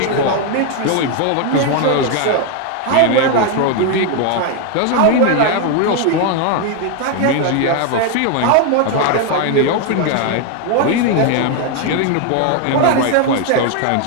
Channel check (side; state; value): both; different; correlation 0.01